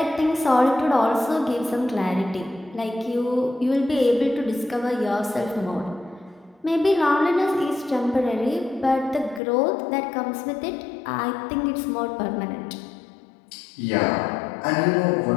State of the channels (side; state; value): right; drops out; at 9.4 s